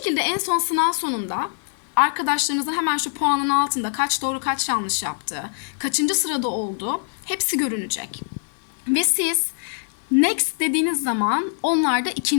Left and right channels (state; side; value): silent; right; digital silence